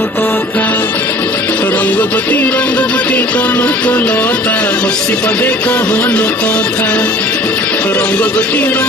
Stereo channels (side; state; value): both; normal; correlation 0.47